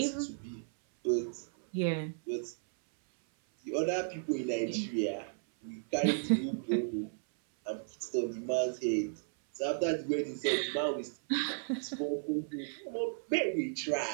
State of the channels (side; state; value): left; silent; 55 dB below the other